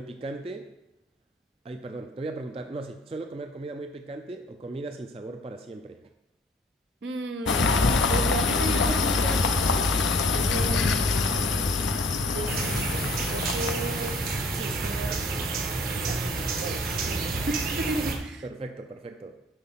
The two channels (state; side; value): normal; both; correlation 0.54